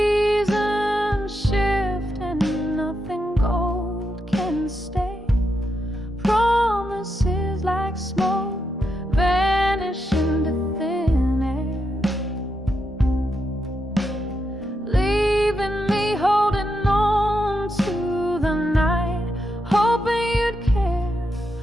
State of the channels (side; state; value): both; normal; correlation 0.84